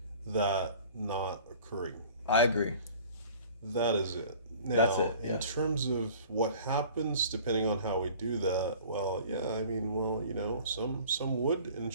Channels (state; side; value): inverted; both; correlation -0.47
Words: that not occurring. I agree. That is it. Now, That's it, yeah. in terms of what happens, depending on how we do that, some would and